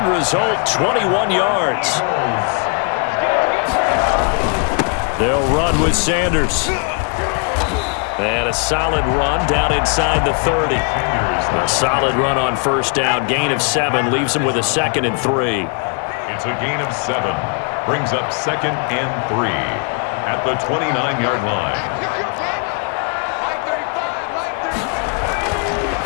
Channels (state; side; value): quieter; right; 38.3 dB